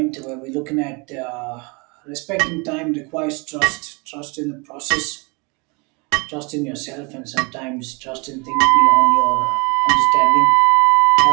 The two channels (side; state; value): left; quieter; 30.0 dB